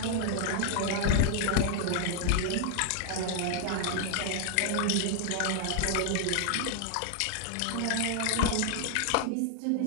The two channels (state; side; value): different; both; correlation -0.01